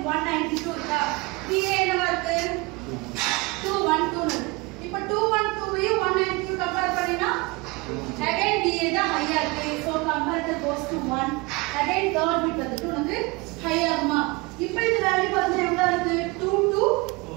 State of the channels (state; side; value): quieter; left; 25.5 dB